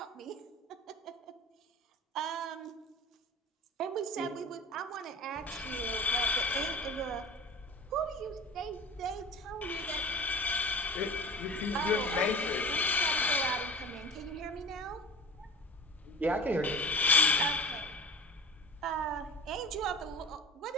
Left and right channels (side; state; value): both; normal; correlation 0.37